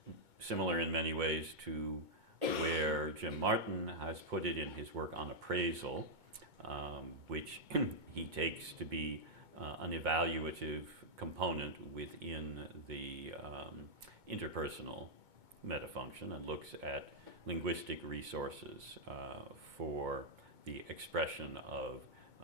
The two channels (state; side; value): late; left; 2.2 ms